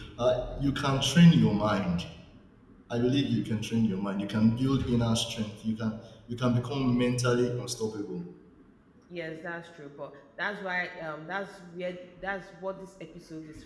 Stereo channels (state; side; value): identical; both; correlation 1.00